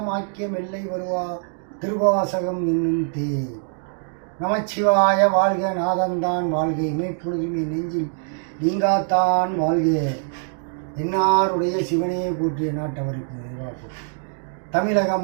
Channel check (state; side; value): silent; left; digital silence